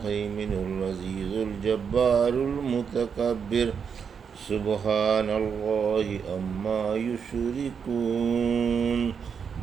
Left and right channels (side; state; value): left; quieter; 6.7 dB